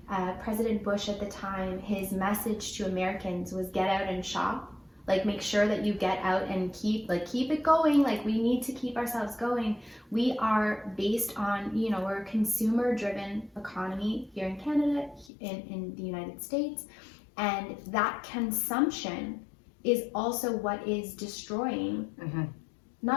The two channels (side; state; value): right; drops out; at 15.3 s